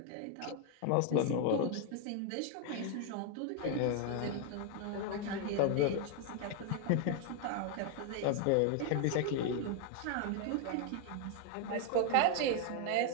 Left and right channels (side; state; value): both; different; correlation 0.00